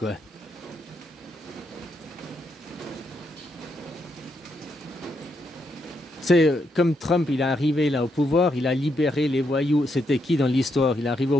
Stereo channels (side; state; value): both; normal; correlation 0.79